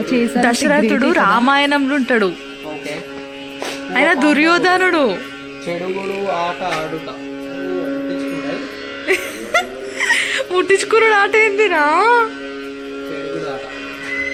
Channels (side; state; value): both; identical; correlation 1.00